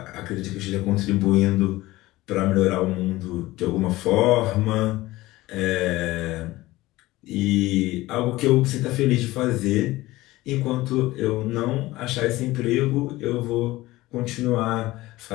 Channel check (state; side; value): quieter; right; 18.3 dB